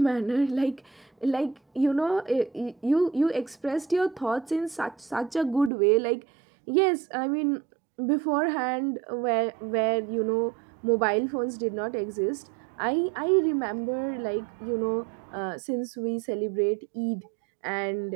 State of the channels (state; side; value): drops out; left; at 5.7 s